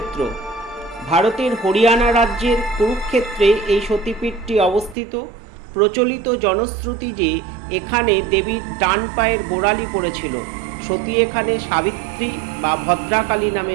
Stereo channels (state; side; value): drops out; left; at 5.0 s